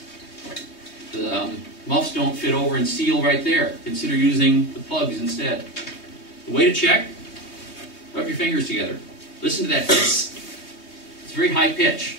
the muffs don't fit over and seal right there. Consider using the plugs instead. The way to check, rub your fingers together. Listen to that hiss. It's very high pitch.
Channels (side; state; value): right; late; 3.2 ms